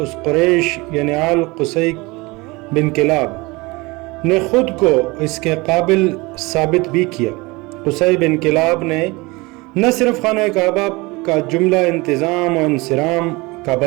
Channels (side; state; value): left; quieter; 24.0 dB